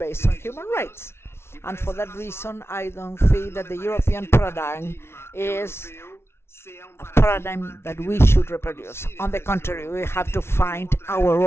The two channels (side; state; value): right; late; 0.12 ms